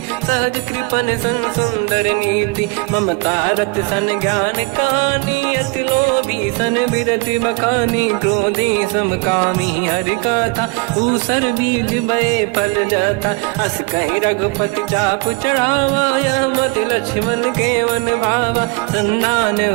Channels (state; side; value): quieter; left; 27.0 dB